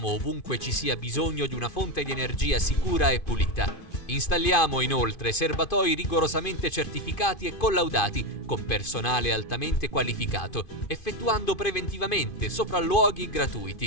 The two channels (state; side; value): late; right; 2.5 ms